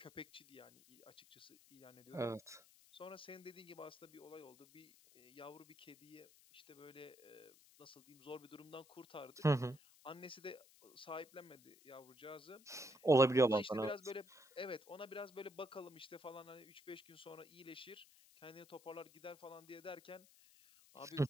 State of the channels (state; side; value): noise; left; hiss, 24 dB below the sound